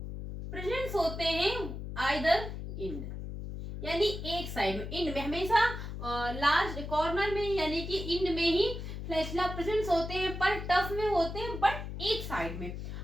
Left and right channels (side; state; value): left; noise; hum, 7 dB below the sound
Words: प्रेजेंस होते हैं आइदर इंड, यानी एक साइड में, इंड में हमेशा लास्ट कॉर्नर में यानी कि इंड में ही फ्लैजिला प्रेजेंट होते हैं पर टफ में होते हैं बट एक साइड में।